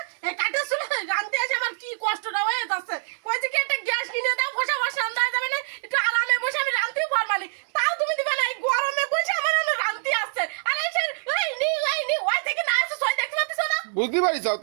এই কাঠে চুলে রান্তে আসে আমার কি কষ্টটা হয়ে যাচ্ছে। কইছে কি একটা গ্যাস কিনে দাও, বসে বসে রান্না যাবে না, একটু আরামে বসে আমি রান্তেও পারবো না। তাও তুমি দিবে না, এই গরমে বসে আমার অনেক রান্তি আসছে। আর এই নি ওই থেকে না আসে সই দেখতে পাচ্ছিস না? বুঝতে পারিস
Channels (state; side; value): silent; left; digital silence